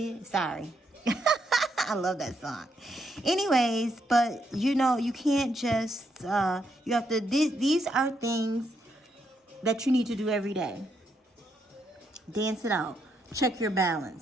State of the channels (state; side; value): normal; both; correlation 0.78